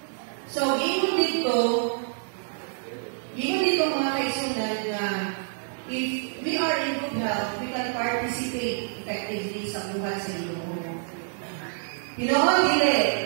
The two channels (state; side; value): silent; left; 60 dB below the other